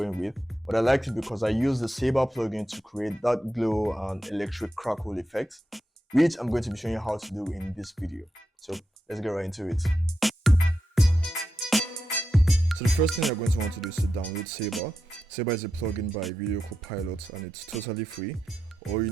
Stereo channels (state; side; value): normal; both; correlation 0.87